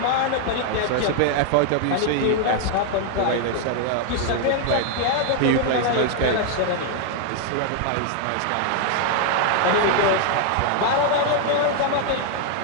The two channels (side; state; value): both; different; correlation 0.00